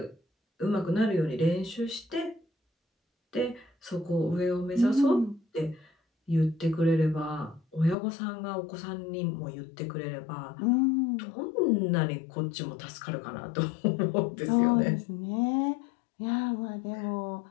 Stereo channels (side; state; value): right; drops out; at 8.0 s